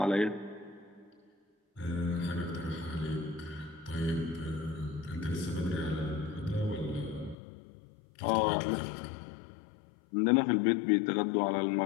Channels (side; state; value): right; drops out; at 7.4 s